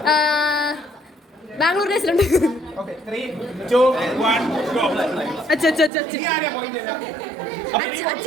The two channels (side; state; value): left; drops out; at 5.9 s